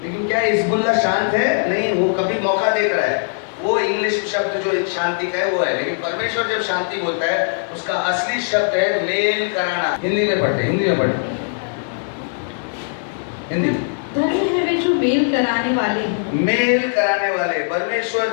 लेकिन क्या हिजबुल्लाह शांत है? नहीं, वो कभी मौका देख रहा है। वो इंग्लिश शब्द जो शांति का है वो है, लेकिन परमेश्वर जब शांति बोलता है उसका असली शब्द है मेल कराना। हिंदी में पढ़ते, हिंदी। धन्य है वे जो मेल कराने वाले हैं। मेल कराने वाले,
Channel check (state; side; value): silent; right; digital silence